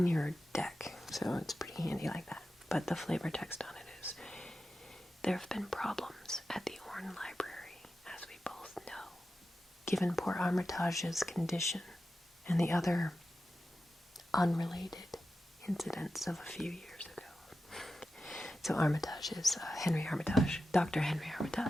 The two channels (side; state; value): both; normal; correlation 0.92